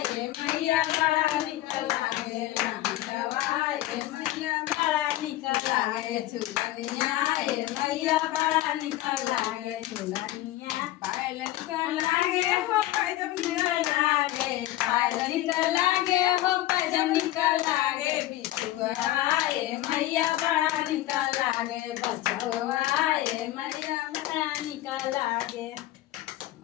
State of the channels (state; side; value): quieter; right; 15.4 dB